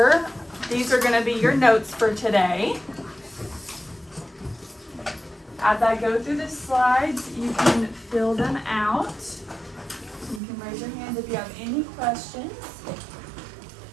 These are gonna be your notes for today. As I go through the slides, you can fill them out. You can raise your hand if you have any questions.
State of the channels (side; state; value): left; drops out; at 10.4 s